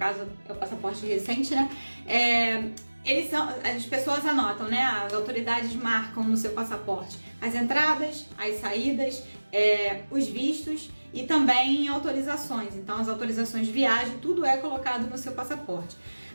é o passaporte recente, né? As pessoas anotam, né? As autoridades marcam no seu passaporte as entradas, as saídas, os vistos e também autorizações. Então, as autorizações de viagem, tudo é colocado no seu passaporte.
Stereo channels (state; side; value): inverted; both; correlation -1.00